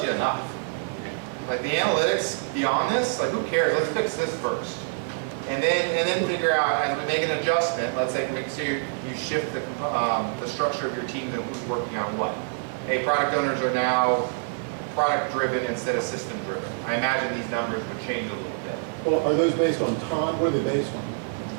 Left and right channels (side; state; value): left; silent; digital silence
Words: you enough. Like the analytics beyond this, like who cares? Let's fix this first. And then figure out, as we make an adjustment, let's say make sure you shift the structure of your team and who's working on what. Hey, product owners are now product driven instead of system driven. I imagine these numbers would change a little bit. Well, are those based on time? What are they based on?